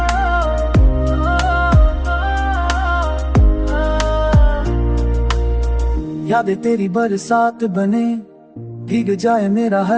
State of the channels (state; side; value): identical; both; correlation 1.00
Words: यादें तेरी बरसात बने, भीग जाए मेरा